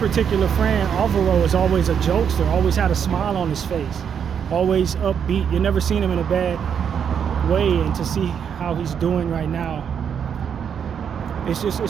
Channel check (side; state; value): left; quieter; 7.7 dB